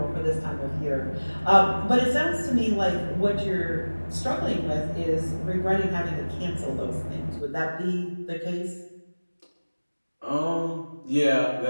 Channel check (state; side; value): inverted; both; correlation -1.00